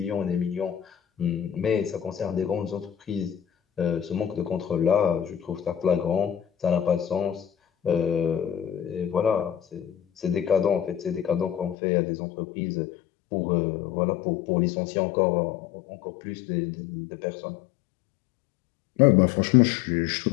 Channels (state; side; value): drops out; right; at 11.8 s